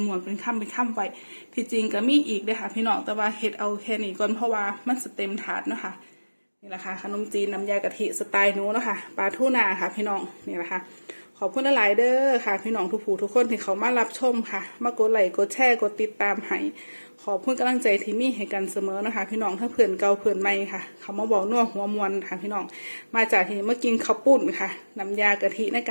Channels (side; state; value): both; inverted; correlation -1.00